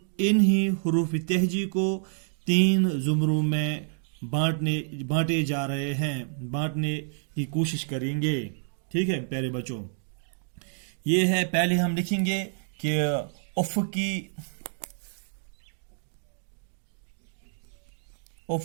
انہی حروف تہجی کو 3 زمروں میں بانٹے جا رہے ہیں، بانٹنے کی کوشش کریں گے۔ ٹھیک ہے پیارے بچوں، یہ ہے، پہلے ہم لکھیں گے کہ افقی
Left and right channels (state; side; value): silent; left; 56 dB below the other